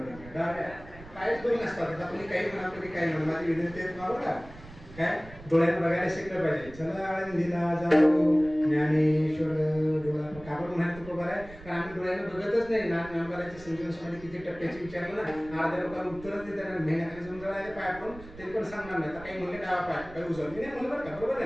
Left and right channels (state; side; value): noise; right; rumble, 18 dB below the sound